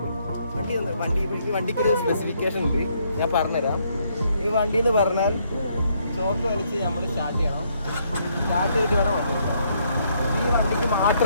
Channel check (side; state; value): both; inverted; correlation -0.71